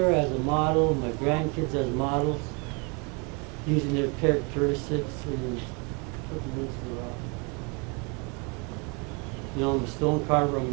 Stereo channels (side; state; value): left; quieter; 32.2 dB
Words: as a model, my grandkids as models, using their characteristics and putting them into the rock. You know, I'm a stone carver, I'm